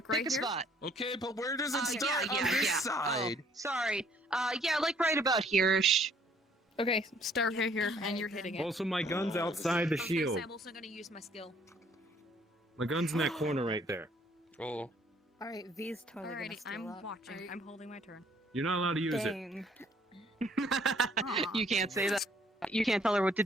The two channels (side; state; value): both; normal; correlation 0.62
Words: right Pick a here? spot. Okay, but where does it Yeah, start on yeah, this yeah. side? Oh, sorry. Yeah, like right about here-ish. Okay, start right here, and you're hitting it. also my gun's outside the shield. I'm also going to use my skill. My gun's in that corner right there. Oh. All right, V's totally Alrighty, gonna steal I'm up. watching. I'm holding my turn. You're not allowed to use it. Dang. You can't say that. You can't tell her what to